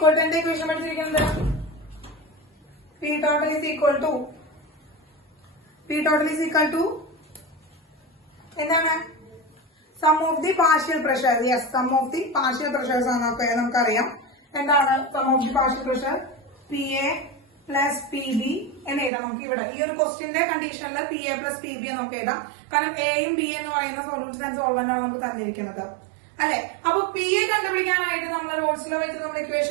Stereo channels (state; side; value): drops out; left; at 19.1 s